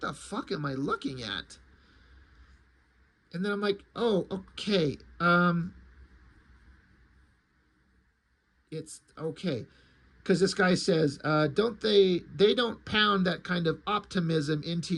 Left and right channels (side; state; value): both; identical; correlation 1.00